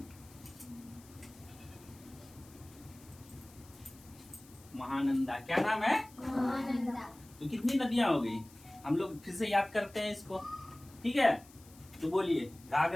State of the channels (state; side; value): noise; left; hiss, 23 dB below the sound